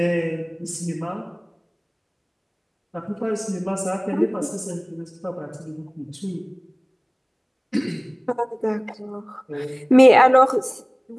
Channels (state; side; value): identical; both; correlation 1.00